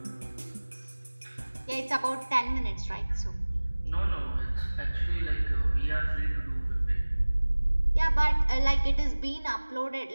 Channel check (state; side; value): inverted; both; correlation -1.00